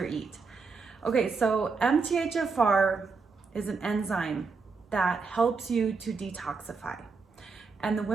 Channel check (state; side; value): quieter; left; 4.7 dB